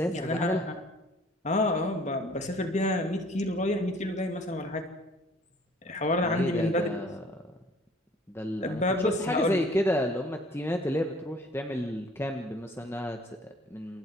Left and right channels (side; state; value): both; normal; correlation 0.54